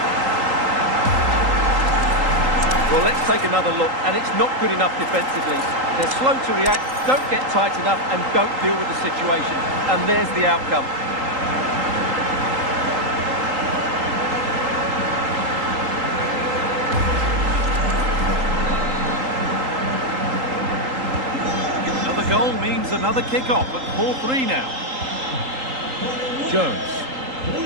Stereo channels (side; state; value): left; late; 3.8 ms